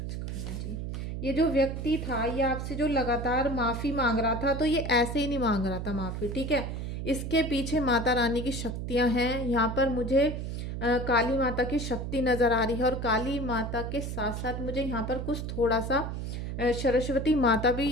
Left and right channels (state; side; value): noise; right; hum, 5 dB below the sound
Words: Khanna ji. ये जो व्यक्ति था, ये आपसे जो लगातार माफ़ी मांग रहा था, तो ये ऐसे ही नहीं मांग रहा था माफ़ी, ठीक है। इसके पीछे माता रानी की शक्तियां हैं। यहाँ पर मुझे काली माता की शक्ति नज़र आ रही है और काली माता के साथ साथ मुझे यहाँ पर कुछ थोड़ा सा सरस्वती माता भी